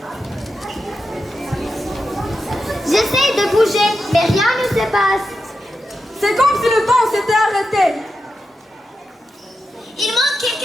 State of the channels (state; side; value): normal; both; correlation 0.88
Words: J'essaie de bouger, mais rien ne se passe. C'est comme si le temps s'était arrêté. Il manque